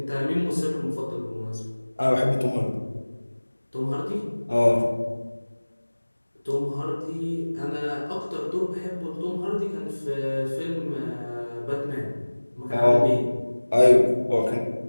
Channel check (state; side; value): inverted; both; correlation -1.00